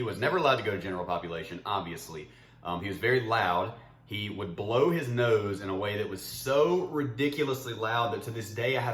was never allowed to go to general population, obviously. He was very loud. he would blow his nose in a way that was so ridiculously loud that to this day I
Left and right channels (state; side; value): identical; both; correlation 1.00